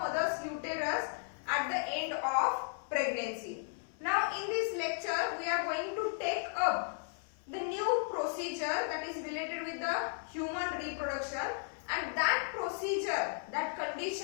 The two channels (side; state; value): right; silent; 54 dB below the other